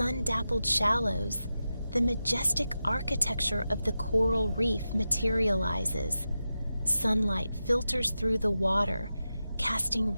shallows, the majestic architecture of the coral reef materializes. Sunlight filters through the water, casting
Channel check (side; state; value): both; inverted; correlation -0.91